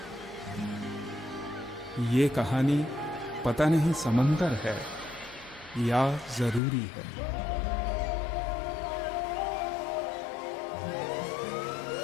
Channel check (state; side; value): drops out; right; at 6.6 s